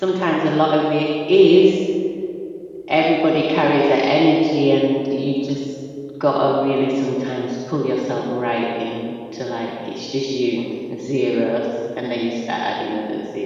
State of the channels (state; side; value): identical; both; correlation 1.00